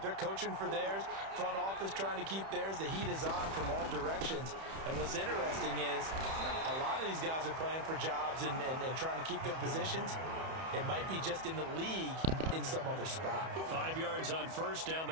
They're coaching for theirs. Front office trying to keep theirs. The heat is on from all directions. And what's interesting is a lot of these guys are playing for jobs and trying to keep their positions. It might be just in the league in some other spot. 5 yards on first down,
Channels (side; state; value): left; late; 31 ms